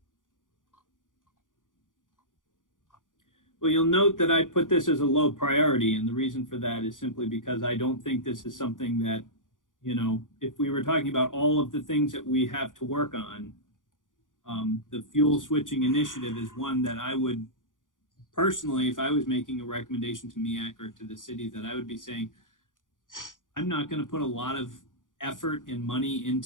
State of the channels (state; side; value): late; right; 0.88 ms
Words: Well, you'll note that I put this as a low priority, and the reason for that is simply because I don't think this is something that, if we were talking about all of the things that we have to work on, the fuel switching initiative is one that I would personally, if I was making a recommendation to MEAC or to the city, that I would be saying, I'm not going to put a lot of effort and money